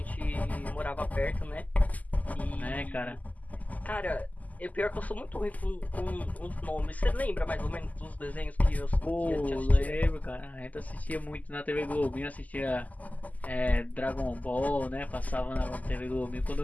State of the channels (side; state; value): right; late; 0.078 ms